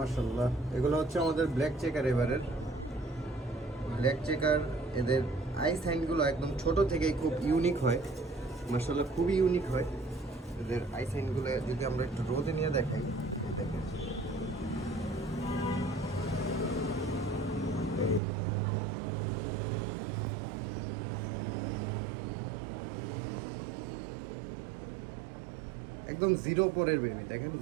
এগুলো হচ্ছে আমাদের ব্ল্যাক চেকার। এবারের ব্ল্যাক চেকার, এদের আই সাইনগুলো একদম ছোট থেকেই খুব ইউনিক হয়। মাশাআল্লাহ, খুবই ইউনিক হয় এদের আই সাইনগুলো। যদি আমরা একটু রোদে নিয়ে দেখাই, এই দেখেন, একদম জিরো পরের বেবি। দেখেন,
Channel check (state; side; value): drops out; left; at 18.2 s